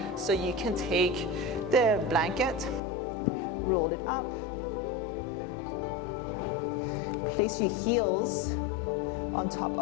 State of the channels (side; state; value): right; drops out; at 2.8 s